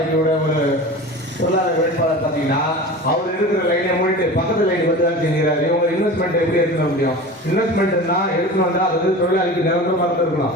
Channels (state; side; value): normal; both; correlation 0.34